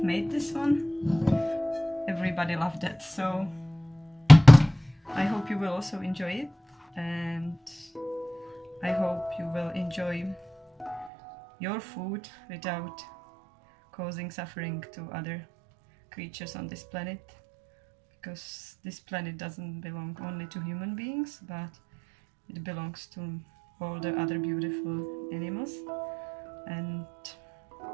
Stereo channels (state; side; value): drops out; left; at 11.1 s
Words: made this one, everybody loved it. So I hope you will also enjoy it, and I hope you will enjoy your food without causing suffering to other creatures on this planet, because this planet doesn't belong only to human beings, but it belongs to all the other beautiful animals, and